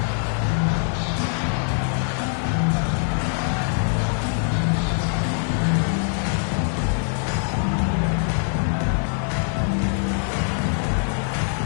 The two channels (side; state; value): right; silent; 57 dB below the other